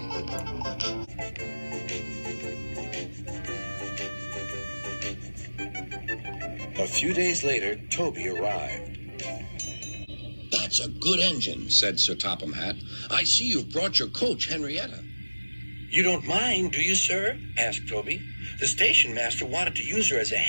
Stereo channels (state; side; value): inverted; both; correlation -1.00